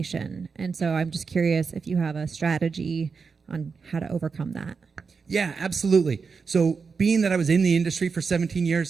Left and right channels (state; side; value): quieter; left; 5.2 dB